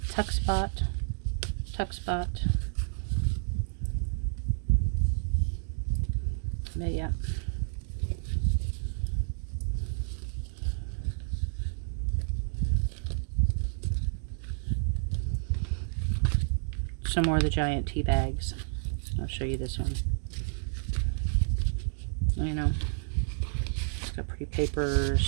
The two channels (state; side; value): silent; left; digital silence